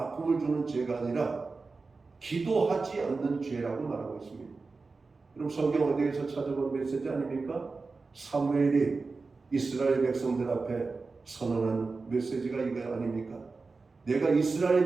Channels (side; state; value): left; quieter; 4.0 dB